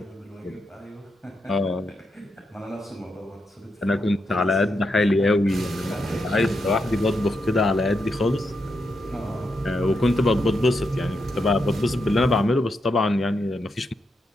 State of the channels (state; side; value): normal; both; correlation 0.83